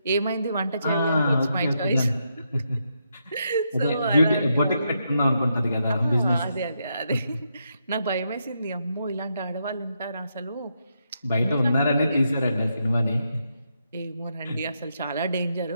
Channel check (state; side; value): inverted; both; correlation -0.81